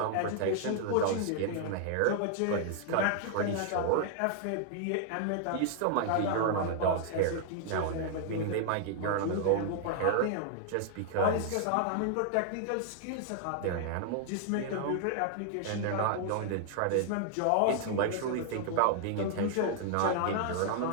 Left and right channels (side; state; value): both; different; correlation -0.01